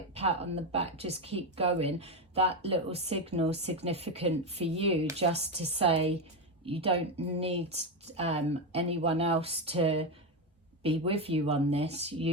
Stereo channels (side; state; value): both; normal; correlation 0.11